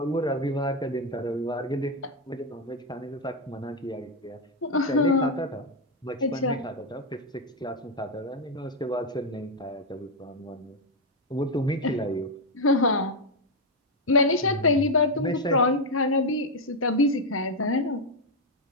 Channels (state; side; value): normal; both; correlation 0.03